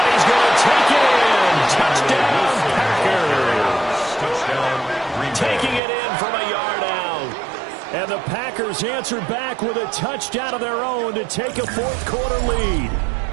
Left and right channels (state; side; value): drops out; left; at 5.8 s